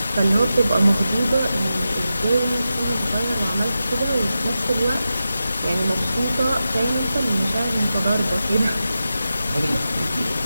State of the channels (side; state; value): both; inverted; correlation -0.91